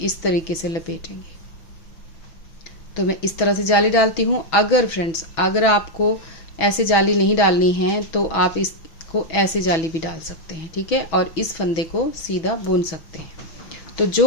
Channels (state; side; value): late; right; 6.1 ms